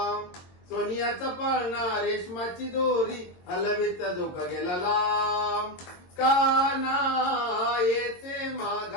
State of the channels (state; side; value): late; right; 22 ms